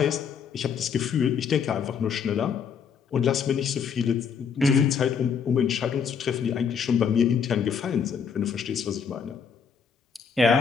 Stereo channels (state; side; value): quieter; right; 6.7 dB